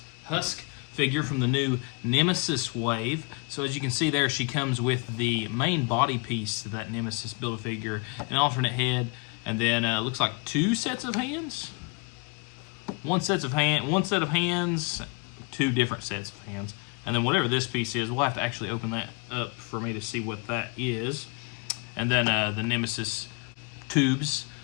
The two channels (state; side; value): quieter; right; 31.8 dB